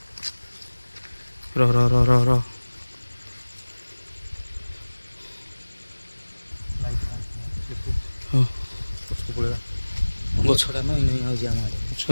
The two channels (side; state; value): both; inverted; correlation -1.00